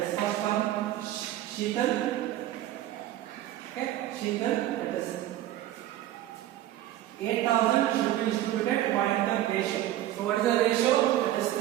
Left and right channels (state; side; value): quieter; left; 13.7 dB